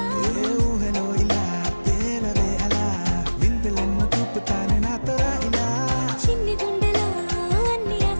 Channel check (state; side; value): inverted; both; correlation -1.00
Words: ఏ ఊహలో ఇలా తేలవే అలా వింతలెన్నో చూపుతానే నాతో రా ఇలా చిన్ని గుండెలో అన్ని